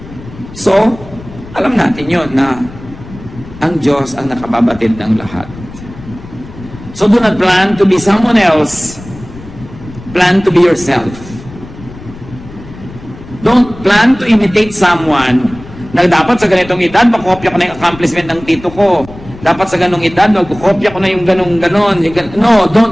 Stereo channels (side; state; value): left; noise; rumble, 16 dB below the sound